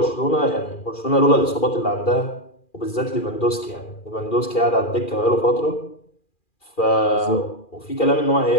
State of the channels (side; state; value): right; late; 2.4 ms